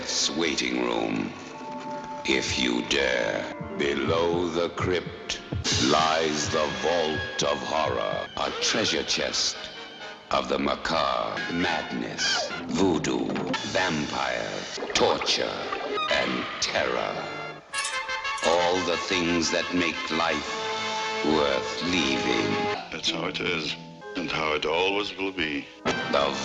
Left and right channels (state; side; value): identical; both; correlation 1.00